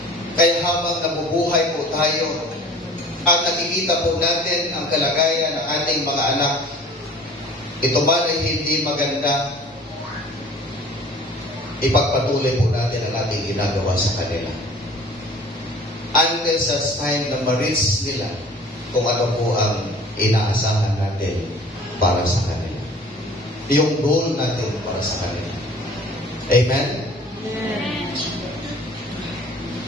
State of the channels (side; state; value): both; normal; correlation 0.47